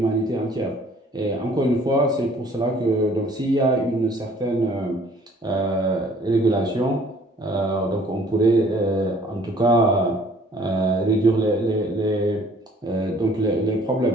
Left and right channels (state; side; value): normal; both; correlation 0.56